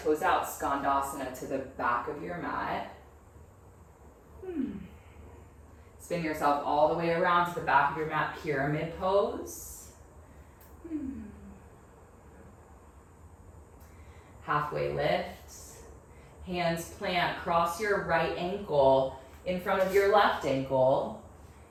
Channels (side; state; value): both; identical; correlation 1.00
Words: toes out. Skandasana to the back of your mat. Spin yourself all the way around to the back of your mat, pyramid pose. Halfway lift. Hands plant, cross your right ankle in front of your left ankle.